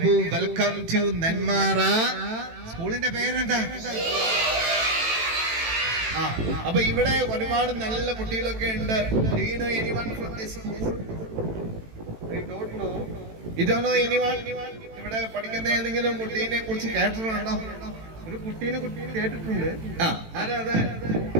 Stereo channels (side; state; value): left; late; 18 ms